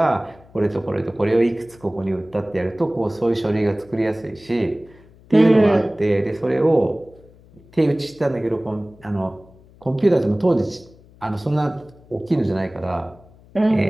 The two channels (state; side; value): noise; left; hum, 26 dB below the sound